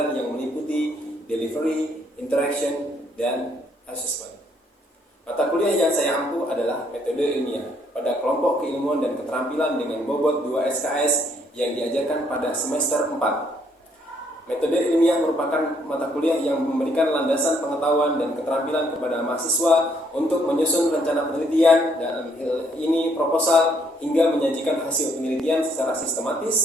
yang meliputi delivery, interaction, dan assessment. Mata kuliah yang saya ampu adalah metode ilmiah pada kelompok keilmuan dan keterampilan dengan bobot 2 SKS yang diajarkan pada semester 4. Metode ilmiah merupakan mata kuliah yang memberikan landasan pengetahuan dan keterampilan kepada mahasiswa untuk menyusun rencana penelitian dan ini proposal hingga menyajikan hasil penelitian secara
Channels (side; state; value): both; normal; correlation 0.69